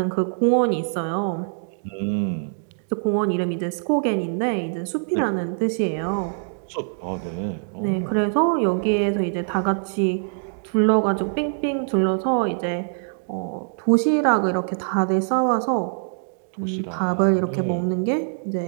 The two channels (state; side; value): silent; left; digital silence